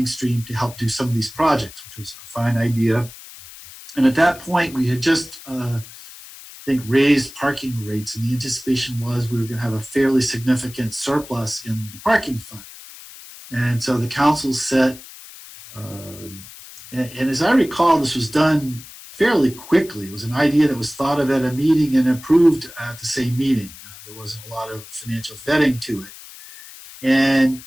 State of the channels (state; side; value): noise; left; hiss, 17 dB below the sound